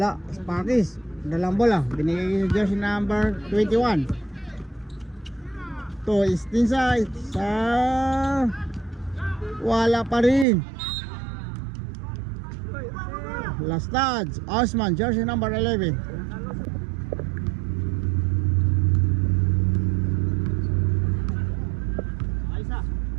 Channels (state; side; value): drops out; left; at 10.5 s